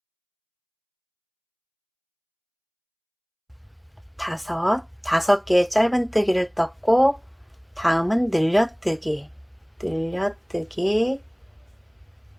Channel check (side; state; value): both; identical; correlation 1.00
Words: 다섯 개의 짧은뜨기를 떴고, 다음은 늘려뜨기, 늘려뜨기,